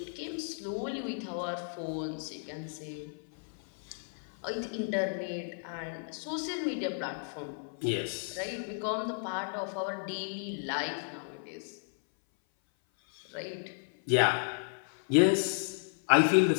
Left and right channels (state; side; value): silent; right; 55 dB below the other